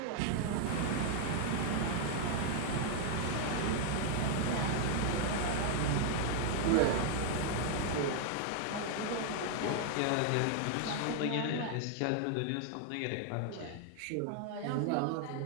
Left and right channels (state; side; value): different; both; correlation 0.00